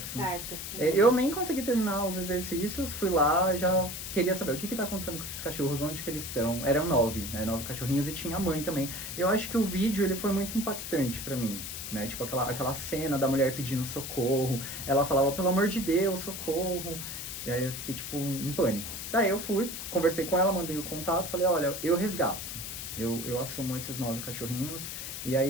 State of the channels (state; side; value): noise; left; hiss, 7 dB below the sound